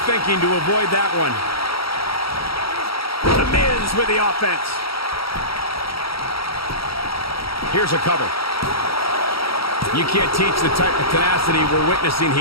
thinking to avoid that one. The Miz with the offense. Here's a cover. You can't teach the type of tenacity we're witnessing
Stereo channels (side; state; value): right; late; 0.75 ms